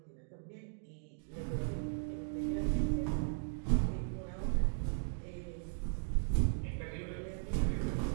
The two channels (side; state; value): left; silent; digital silence